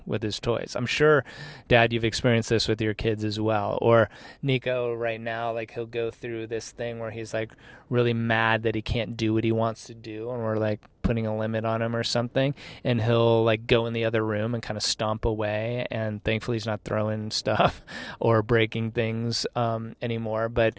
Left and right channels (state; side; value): identical; both; correlation 1.00